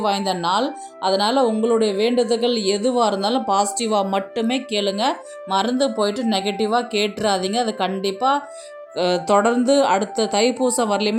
வாய்ந்த நாள். அதனால் உங்களுடைய வேண்டுதல்கள் எதுவாக இருந்தாலும் பாசிட்டிவாக மட்டுமே கேளுங்க. மறந்து போயிட்டு நெகட்டிவாக கேட்டுறாதீங்க. அது கண்டிப்பாக தொடர்ந்து அடுத்த தைப்பூசம்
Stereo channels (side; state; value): both; identical; correlation 1.00